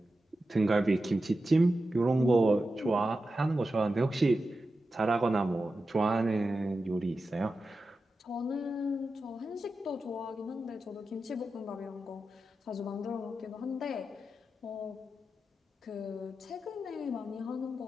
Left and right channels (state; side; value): normal; both; correlation 0.91